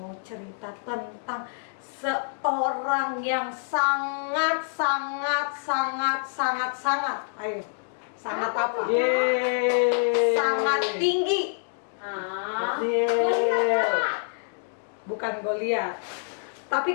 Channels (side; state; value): right; silent; digital silence